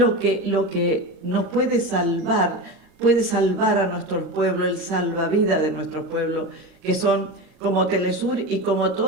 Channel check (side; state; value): left; late; 39 ms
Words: que nos puede salvar a nuestros pueblos, el salvavidas de nuestros pueblos, que son como Telesur y como